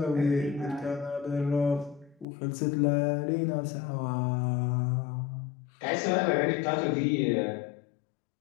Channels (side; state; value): right; drops out; at 2.2 s